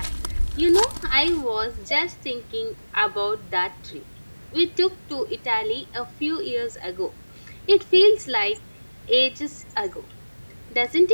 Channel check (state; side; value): inverted; both; correlation -1.00